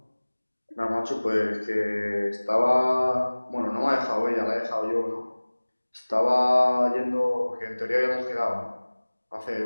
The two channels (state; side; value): inverted; both; correlation -1.00